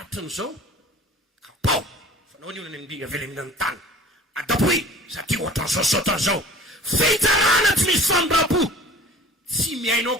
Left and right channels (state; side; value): normal; both; correlation 0.45